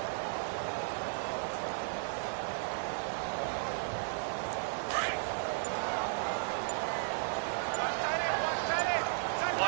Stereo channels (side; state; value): left; silent; 55 dB below the other